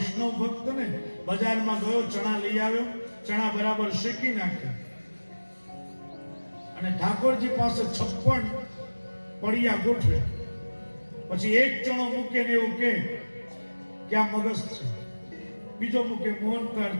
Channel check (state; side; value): inverted; both; correlation -1.00